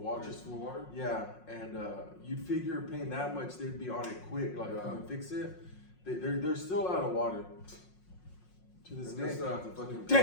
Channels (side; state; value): right; late; 5.5 ms